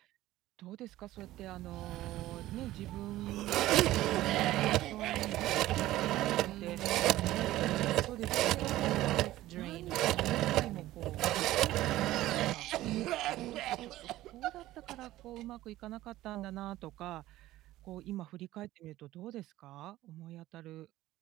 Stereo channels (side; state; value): left; quieter; 15.7 dB